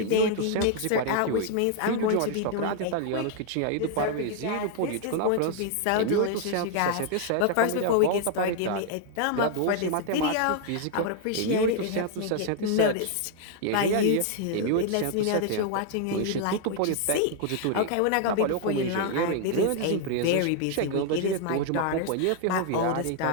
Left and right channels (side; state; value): both; different; correlation 0.00